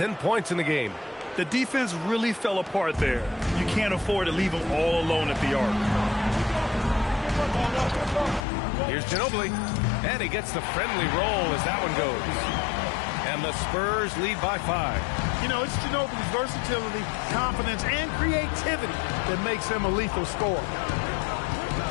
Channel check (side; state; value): right; drops out; at 8.5 s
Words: points in the game. The defense really fell apart there. You can't afford to leave them all alone at the arc. Here's Ginobili, and he gets the friendly roll as that one goes. And the Spurs lead by 5. You know, it's Ginobili's versatility, confidence, and creativity that makes him a lethal scorer.